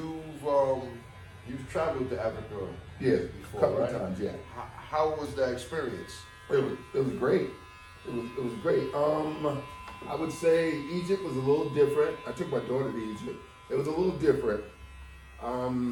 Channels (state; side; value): identical; both; correlation 1.00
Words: traveled to Africa Yeah, before, a couple right? of times, yeah. How was that experience? It was great. It was great. I would say Egypt was a little different. I took my daughter to Egypt. It was a little different. I